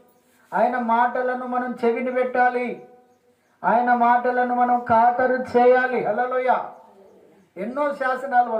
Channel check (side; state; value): both; identical; correlation 1.00